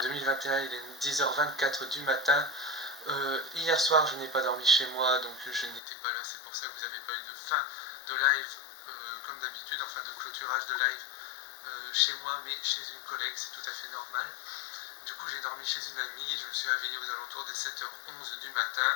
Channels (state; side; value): drops out; right; at 5.8 s